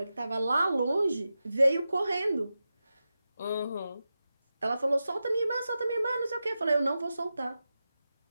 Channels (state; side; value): inverted; both; correlation -0.92